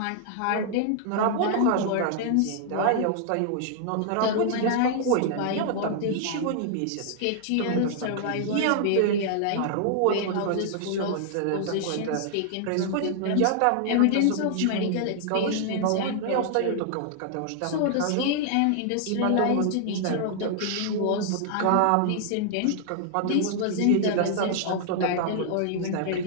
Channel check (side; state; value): both; different; correlation -0.01